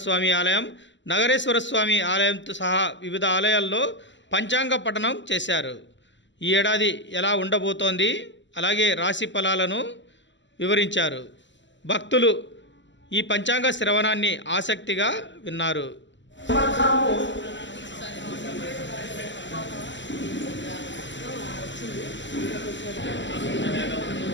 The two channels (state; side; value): late; right; 0.54 ms